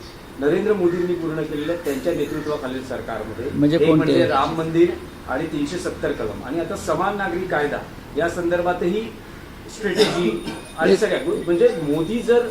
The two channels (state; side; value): identical; both; correlation 1.00